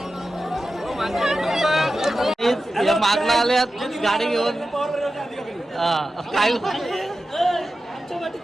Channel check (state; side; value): normal; both; correlation 0.93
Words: मागला आल्यात गाडी घेऊन. काय